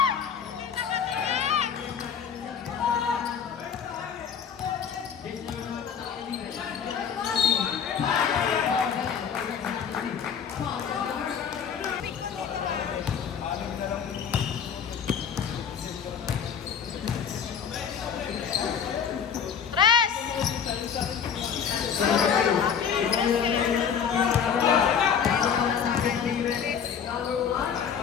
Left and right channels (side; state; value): right; quieter; 7.4 dB